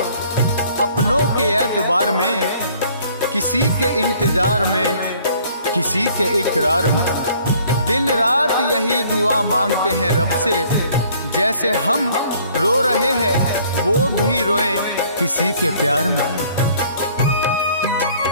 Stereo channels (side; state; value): both; inverted; correlation -0.58